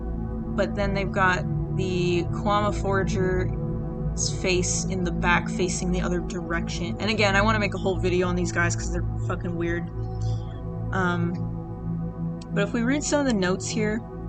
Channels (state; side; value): identical; both; correlation 1.00